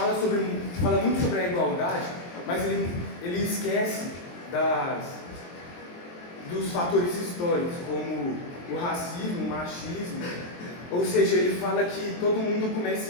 muito sobre a igualdade, mas ele esquece dos fatores históricos, como o racismo, o machismo. Ou seja, ele fala que todo mundo começa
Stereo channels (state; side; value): late; right; 23 ms